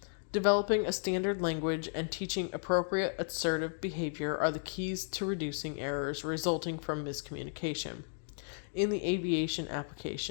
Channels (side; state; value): right; silent; digital silence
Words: Developing a standard language and teaching appropriate assertive behavior are the keys to reducing errors resulting from miscommunication. In the aviation